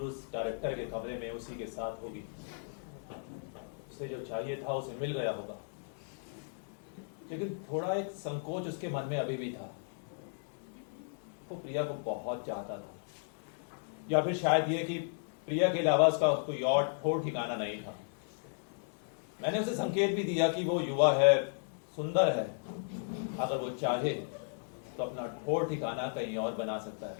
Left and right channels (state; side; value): silent; right; digital silence